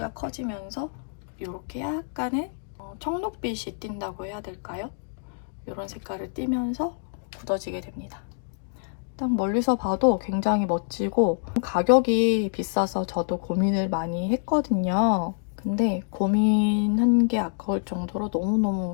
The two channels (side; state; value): right; silent; digital silence